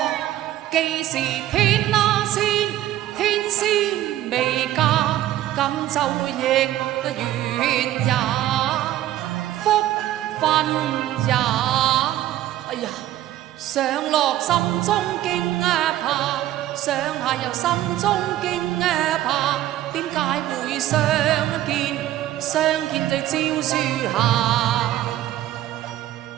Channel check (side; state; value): left; quieter; 13.6 dB